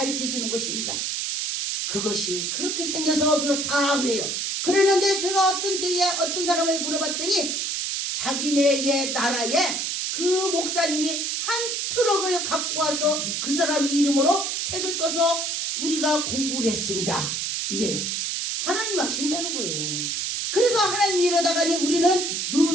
주는 것입니다. 그것이 그렇게 생겨서 그렇다 그래요. 그러는데 제가 어떤 때에 어떤 사람을 물어봤더니 자기네의 나라에 그 목사님이 한 트럭을 갖고 와서 그 사람 이름으로 책을 써서 우리가 공부를 했습니다. 이래요. 하나님 아신다는 거예요. 그래서 하나님이 이러다가니 우리는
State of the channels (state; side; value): noise; right; hiss, 1 dB below the sound